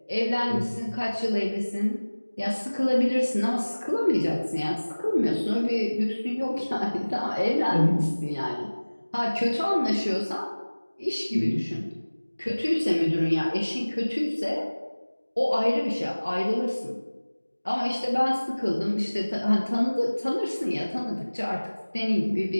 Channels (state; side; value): inverted; both; correlation -1.00